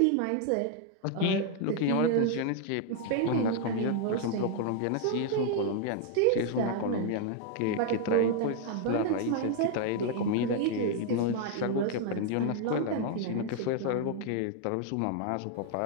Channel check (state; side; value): different; both; correlation 0.00